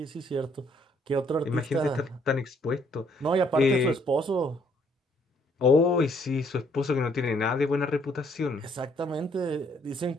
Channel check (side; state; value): both; normal; correlation 0.67